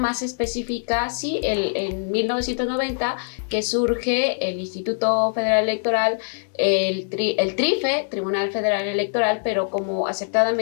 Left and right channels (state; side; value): silent; right; digital silence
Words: específica, sí, en 1990, que surge el Instituto Federal Electoral, el TRIFE, Tribunal Federal Electoral, pero como